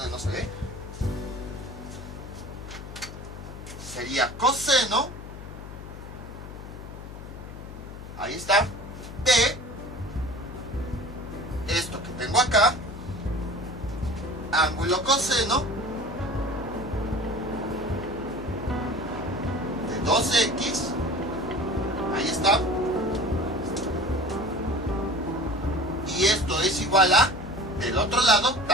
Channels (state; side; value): noise; left; hum, 12 dB below the sound